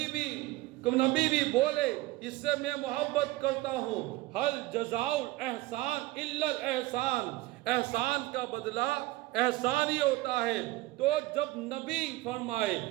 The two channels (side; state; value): left; quieter; 18.7 dB